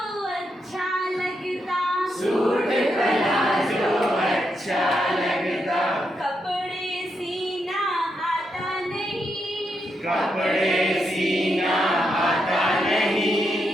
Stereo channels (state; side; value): normal; both; correlation 0.82